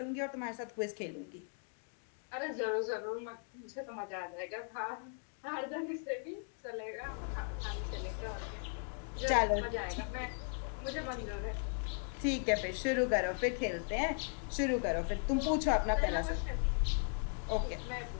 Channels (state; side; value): silent; right; 53 dB below the other